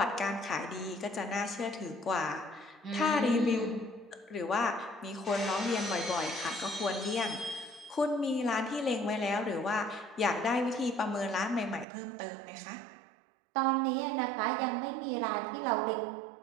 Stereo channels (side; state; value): left; drops out; at 11.9 s